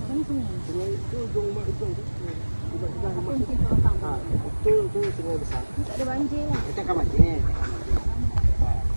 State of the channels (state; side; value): inverted; both; correlation -1.00